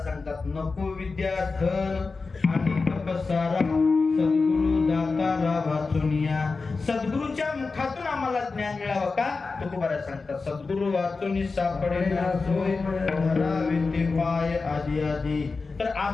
सांगतात, नको विद्या धन आणि तपसारा, सद्गुरु दातारा वाचुनिया. सद्गुरूच्या मुखातून आम्हाला ज्ञान मिळावं का? तुकोबारा सांगतात, सद्गुरु वाचुनी सापडे ना सोय, धरावे ते पाय आदी आदी. तर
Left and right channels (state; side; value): quieter; right; 4.2 dB